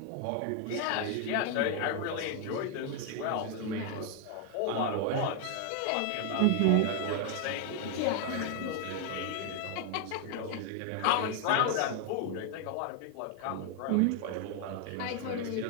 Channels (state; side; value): different; both; correlation 0.00